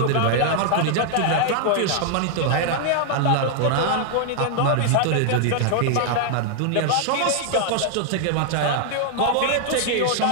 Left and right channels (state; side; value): different; both; correlation 0.00